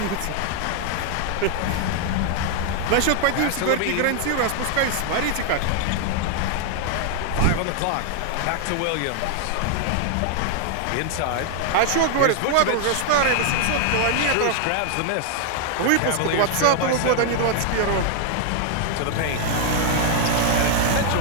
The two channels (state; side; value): different; both; correlation 0.00